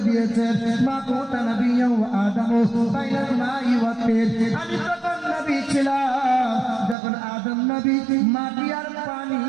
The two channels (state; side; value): drops out; left; at 7.0 s